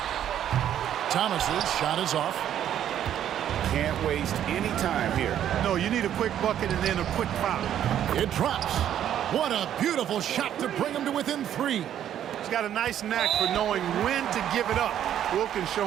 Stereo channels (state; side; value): quieter; left; 10.5 dB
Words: Thomas's shot is off. Can't waste any time here. No, you need a quick bucket and then a quick foul. It drops. What a beautiful shot to bring him to within 3. He's got a nice knack for knowing when to give it up. Wilkins